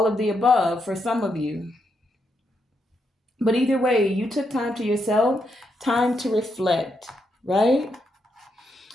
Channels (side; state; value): both; normal; correlation 0.80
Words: of the above for some of you. But either way, you took time to yourself, time to reflect, right?